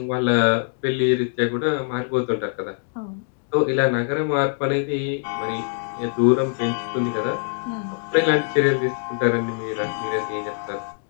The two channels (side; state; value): right; silent; 63 dB below the other